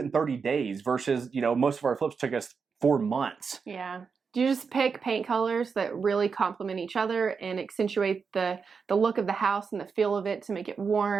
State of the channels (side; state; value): left; quieter; 5.6 dB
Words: in 30 days versus, you know, most of our flips took us 4 months. Yeah. You just pick paint colors that really complement each other and accentuate the look of the house and the feel of it to make it